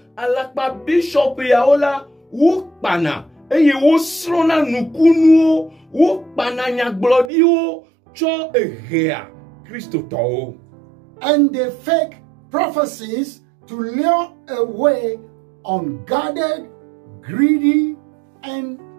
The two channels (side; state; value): left; drops out; at 7.3 s